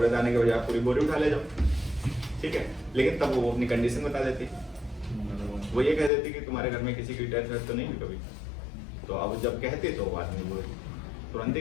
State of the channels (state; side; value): drops out; right; at 6.1 s